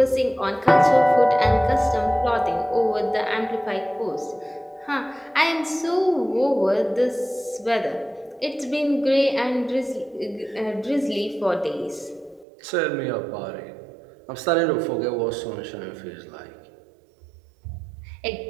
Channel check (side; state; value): left; drops out; at 12.5 s